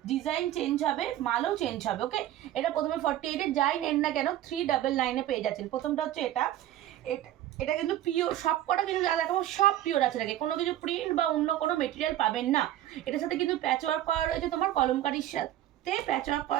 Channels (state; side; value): quieter; left; 13.0 dB